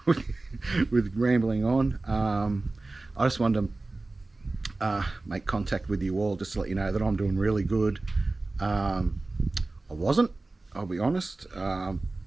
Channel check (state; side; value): quieter; left; 3.2 dB